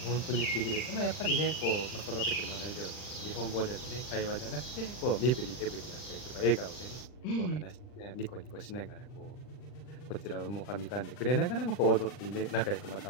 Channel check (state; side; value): late; right; 39 ms